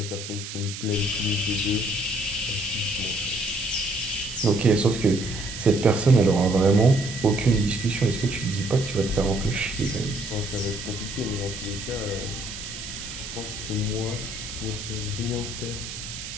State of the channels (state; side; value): noise; right; hiss, 9 dB below the sound